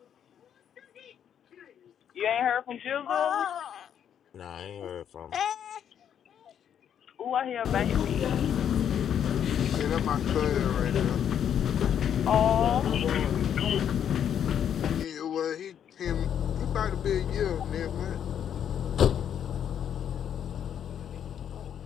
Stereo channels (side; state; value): right; quieter; 9.0 dB